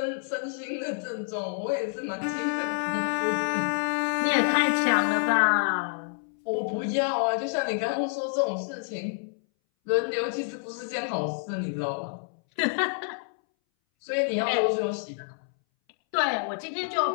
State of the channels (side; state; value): right; silent; 59 dB below the other